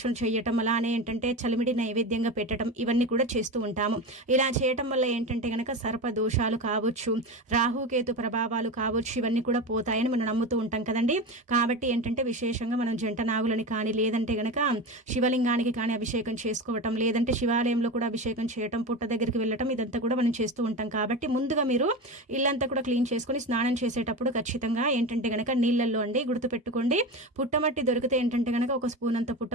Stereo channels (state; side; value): normal; both; correlation 0.24